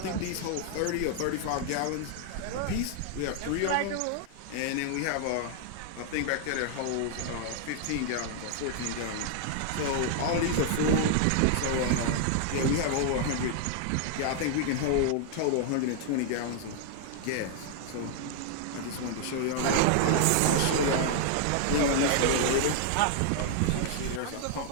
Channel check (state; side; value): different; both; correlation 0.00